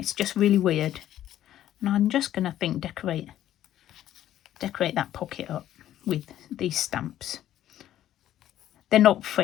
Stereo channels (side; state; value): right; quieter; 12.3 dB